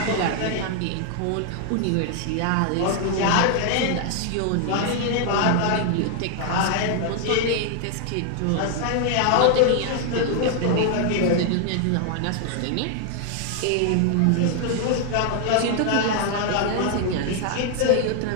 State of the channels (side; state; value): both; different; correlation 0.00